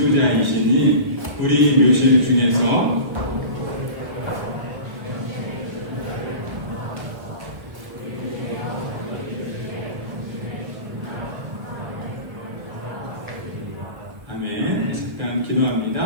우리 묘실 중에서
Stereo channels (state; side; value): late; left; 1.1 ms